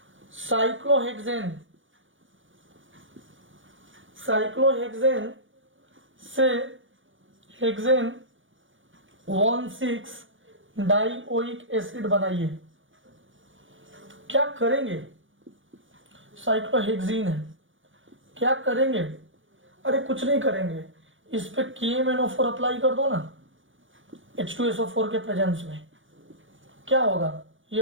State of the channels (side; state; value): left; late; 0.57 ms